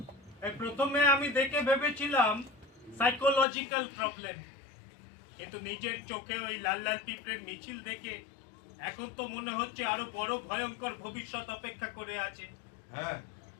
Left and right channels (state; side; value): drops out; right; at 3.5 s